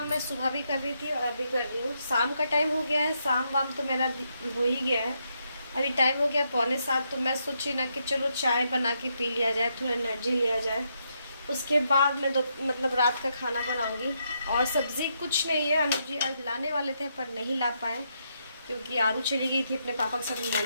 मैं सुबह भी कर रही थी और अभी कर रही हूँ। शाम का टाइम हो गया है, शाम वाम तो मेरा हो ही गया है। अभी टाइम हो गया 6:45, तो मैं सोची ना कि चलो चाय बना के पी लिया जाए, थोड़ा एनर्जी लिया जाए। उसके बाद मैं मतलब रात का खाना बनाऊँगी। और सब्ज़ी कुछ नहीं है, अनुज जी आज लाने वाले थे पर नहीं ला पाए क्योंकि आरू चली गई थी अपने पापा के साथ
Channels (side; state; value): both; inverted; correlation -0.79